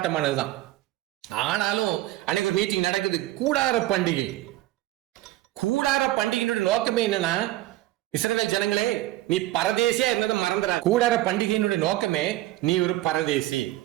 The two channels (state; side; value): quieter; left; 16.1 dB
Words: ஆனாலும் அன்னைக்கு ஒரு மீட்டிங் நடக்குது, கூடார பண்டிகை. கூடார பண்டிகையினுடைய நோக்கமே என்னன்னா, இஸ்ரவேல் ஜனங்களே, நீ பரதேசியா இருந்ததை மறந்துடா. கூடார பண்டிகையினுடைய நோக்கமே நீ ஒரு பரதேசி,